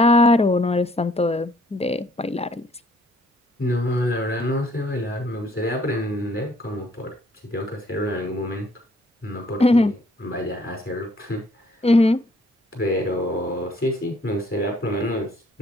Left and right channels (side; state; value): both; normal; correlation 0.63